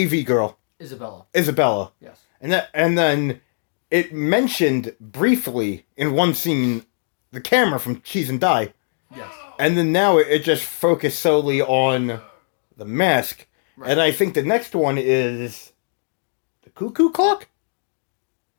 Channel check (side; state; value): right; silent; digital silence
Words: girl. Isabella. Yes. And then it mentioned briefly in one scene the camera from Cheese and Die. Yes. And then now it just focused solely on the mask. Right. And I think the next one is the cuckoo clock?